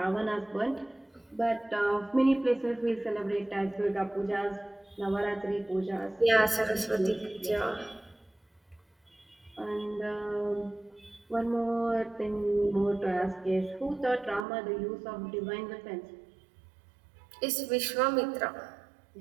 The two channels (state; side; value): drops out; left; at 14.5 s